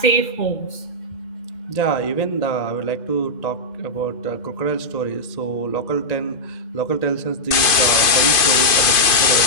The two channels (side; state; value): right; late; 2.5 ms